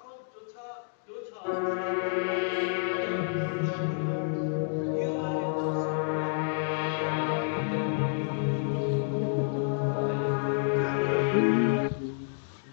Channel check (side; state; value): right; silent; digital silence